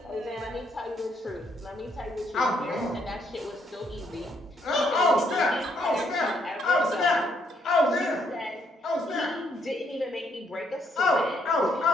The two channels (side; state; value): both; normal; correlation 0.72